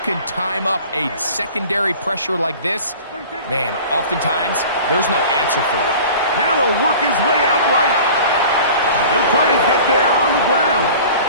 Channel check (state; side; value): inverted; both; correlation -0.42